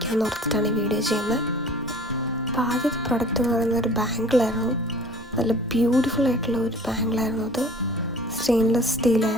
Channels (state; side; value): normal; both; correlation 0.47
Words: ഓർത്തിട്ടാണ് ഈ വീഡിയോ ചെയ്യുന്നത്. അപ്പോൾ ആദ്യത്തെ പ്രൊഡക്റ്റ് എന്ന് പറയുന്നത് ഒരു ബാങ്കിളായിരുന്നു. നല്ല ബ്യൂട്ടിഫുൾ ആയിട്ടുള്ള ഒരു ബാങ്കിളായിരുന്നു. അത് സ്റ്റെയിൻലെസ്